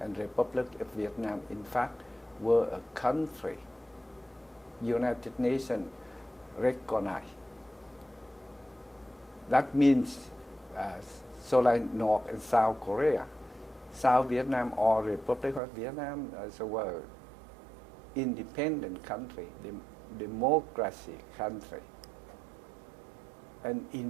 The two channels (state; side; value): drops out; left; at 15.6 s